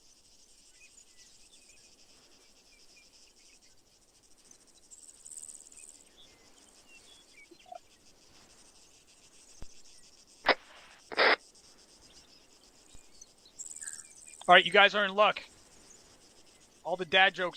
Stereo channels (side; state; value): both; identical; correlation 1.00